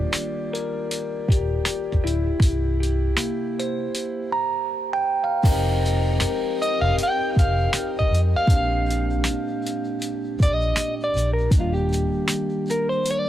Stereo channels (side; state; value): both; normal; correlation 0.88